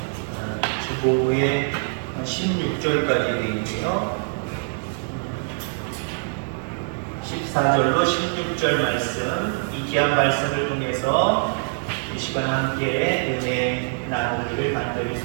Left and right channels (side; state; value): left; silent; digital silence